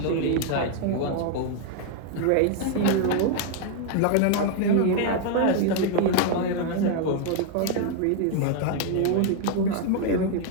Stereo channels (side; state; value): both; different; correlation 0.00